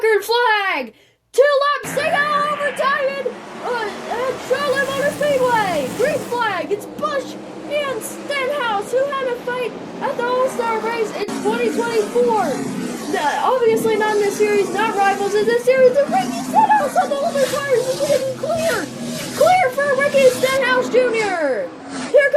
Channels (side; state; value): both; identical; correlation 1.00